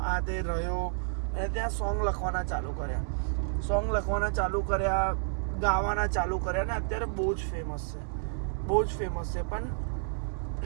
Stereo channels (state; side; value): silent; left; 58 dB below the other